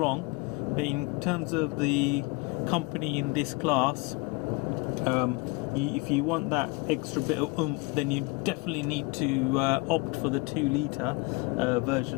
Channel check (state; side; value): quieter; right; 26.7 dB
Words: But in terms of the company in this class, if you want that extra bit of oomph, then you definitely need to opt for the 2-litre